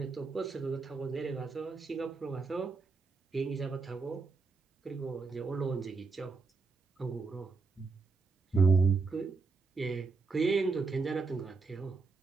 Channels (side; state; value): left; quieter; 4.4 dB